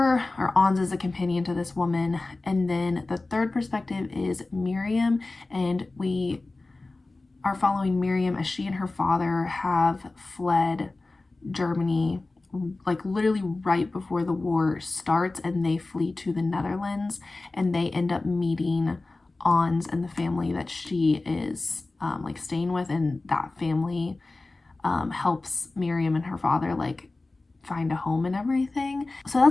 or Ons is a companion to this woman. And then the third perspective is Miriam, and we are following Miriam as she and her father have fled Germany, like literally right before the war starts, and they flee to the Netherlands, and they end up meeting Ons and the family that she is like staying with, and that family helps Miriam and her father like find a home and everything. So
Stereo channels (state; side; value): quieter; right; 3.2 dB